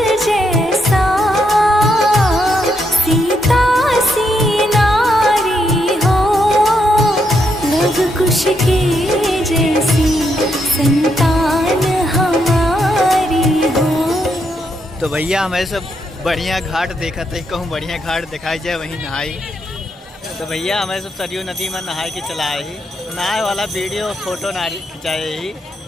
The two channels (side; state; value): both; normal; correlation 0.79